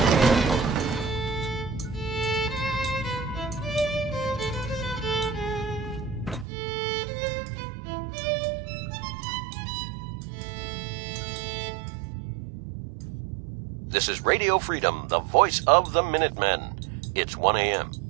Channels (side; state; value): left; drops out; at 6.5 s